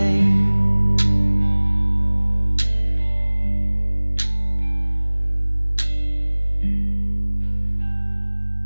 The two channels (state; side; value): inverted; both; correlation -1.00